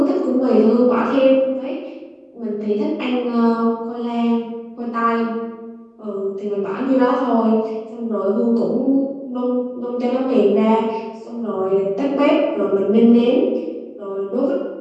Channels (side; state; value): both; identical; correlation 1.00